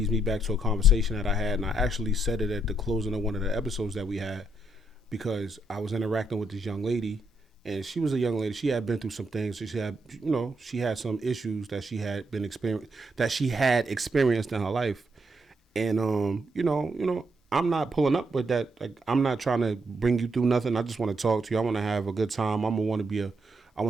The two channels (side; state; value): both; normal; correlation 0.77